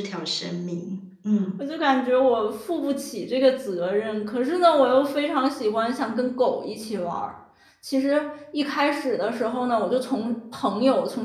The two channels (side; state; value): both; identical; correlation 1.00